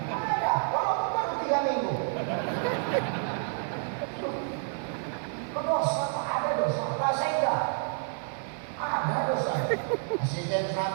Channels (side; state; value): left; silent; 58 dB below the other